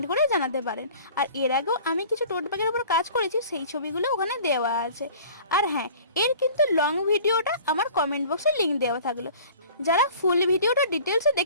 করে জানাতে পারেন। আর এর আগেও আমি কিছু টোট ব্যাগের উপর কাজ করেছি, সেই ছবিগুলো ওখানে দেওয়া আছে। আর হ্যাঁ, এর কিন্তু লং ভিডিওটা আমার কমেন্ট বক্সে লিঙ্ক দেওয়া থাকলো। যারা ফুল ভিডিওটা ডিটেলসে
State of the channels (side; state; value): both; inverted; correlation -0.46